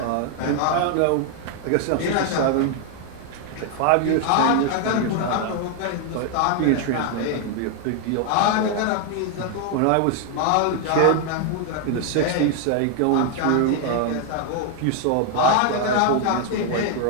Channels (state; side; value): different; both; correlation 0.00